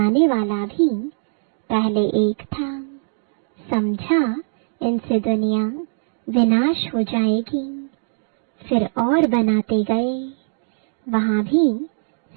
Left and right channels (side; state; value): left; silent; digital silence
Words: वाला भी पहले एक था। समझा इनसे दुनिया विनाश हो जाएगी। फिर और बनाते गए। वहाँ भी